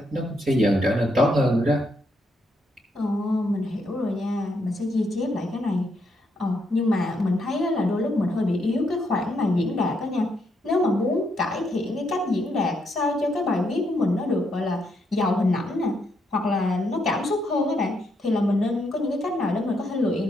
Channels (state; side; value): normal; both; correlation 0.77